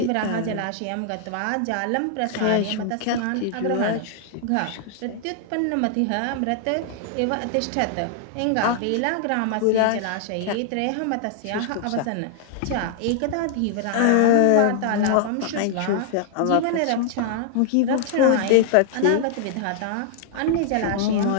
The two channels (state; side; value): different; both; correlation -0.01